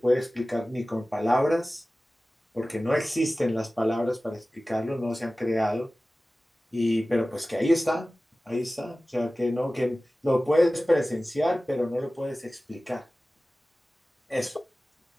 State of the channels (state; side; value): normal; both; correlation 0.97